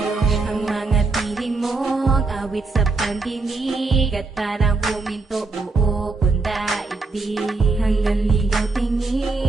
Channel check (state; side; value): quieter; left; 3.7 dB